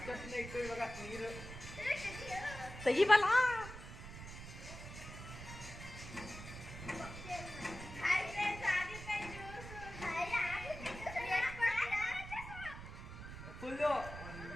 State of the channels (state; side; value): noise; right; rumble, 11 dB below the sound